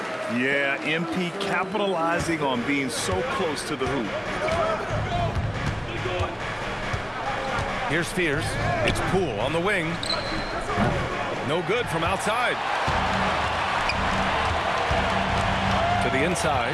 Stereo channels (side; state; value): both; identical; correlation 1.00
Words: Yeah, MP capitalizing on being so close to the hoop. Here's Fears. It's Poole on the wing. No good from outside. To the inside.